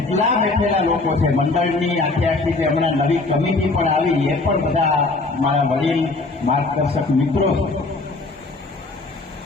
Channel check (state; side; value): quieter; right; 3.4 dB